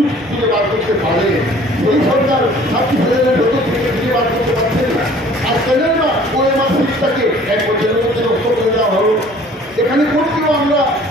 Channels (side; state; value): both; normal; correlation 0.52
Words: খুঁজে বার করতে পারে, সেই সরকার 26,000-এর ভেতর থেকে খুঁজে বার করতে পারছেন না। আর কেন না ওএমআর সিটটাকে 1 বছরের মধ্যে নষ্ট করে দেওয়া হলো। এখানে কোর্টকেও আমরা